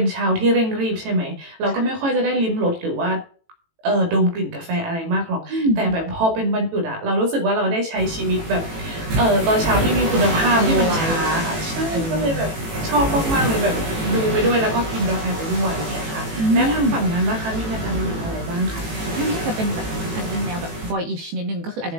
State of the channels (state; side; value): late; left; 18 ms